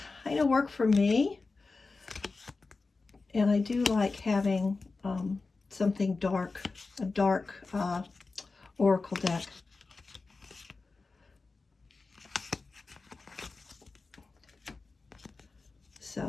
kind of work for me. And I do like having something dark, a dark oracle deck.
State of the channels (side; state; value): right; quieter; 3.9 dB